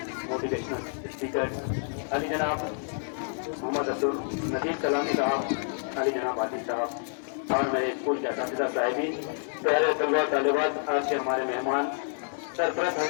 motivational speaker, Ali जनाब मोहम्मद अब्दुल नदीम सलामी साहब, अली जनाब आदिल साहब और मेरे स्कूल के असातिज़ा साहिबीन, प्यारे तलबा तालिबात, आज के हमारे मेहमान, सरपरस्त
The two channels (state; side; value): silent; right; 59 dB below the other